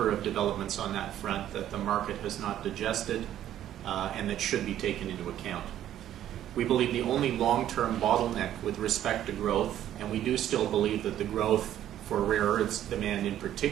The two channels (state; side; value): quieter; left; 11.7 dB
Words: of developments on that front that the market has not digested and that should be taken into account. We believe the only long-term bottleneck with respect to growth, and we do still believe that the growth for rare earths demand in